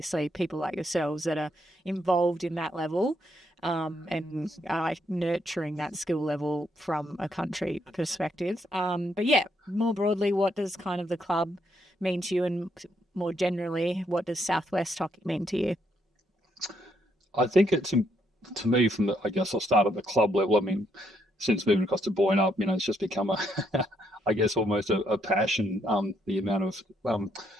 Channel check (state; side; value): normal; both; correlation 0.74